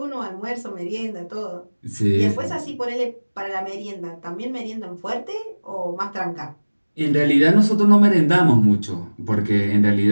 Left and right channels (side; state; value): both; inverted; correlation -1.00